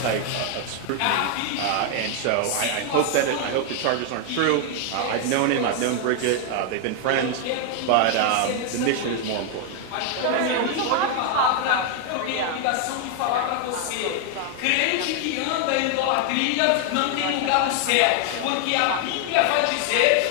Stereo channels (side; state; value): both; different; correlation 0.00